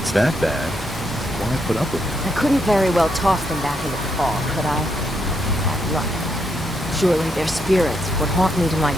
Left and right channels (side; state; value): both; normal; correlation 0.78